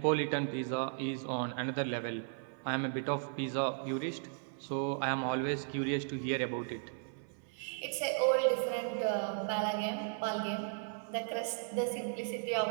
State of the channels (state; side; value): silent; left; 54 dB below the other